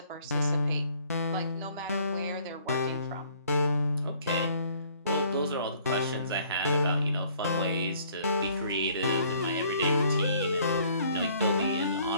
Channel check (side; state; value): both; inverted; correlation -0.60